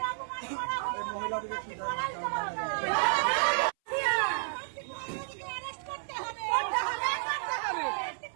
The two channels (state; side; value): silent; left; 57 dB below the other